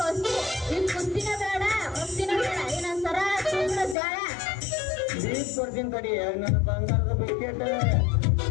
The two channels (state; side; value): drops out; right; at 4.0 s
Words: ಈ ಕುಸ್ತಿನ ಬೇಡ ಕುಸ್ತಿನ ಬೇಡ ಇನ್ನೊಂದ್ ಸರ ತುಂಬ್ರ ಜಾಳ ಬೀಸ್ ಕೊಡ್ತೀನಿ ತಡಿ ನನ್ನ ಬಂಗಾರದ ಬಿಸ್ಕೆಟ್